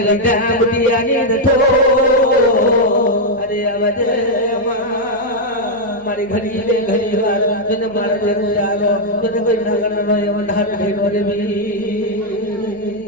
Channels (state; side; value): noise; left; hum, 27 dB below the sound